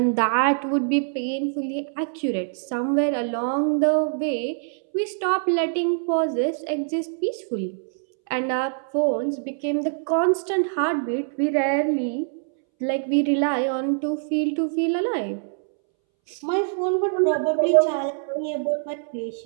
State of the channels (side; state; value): left; silent; 63 dB below the other